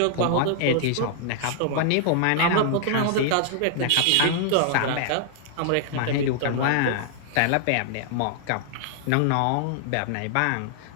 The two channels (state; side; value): different; both; correlation 0.00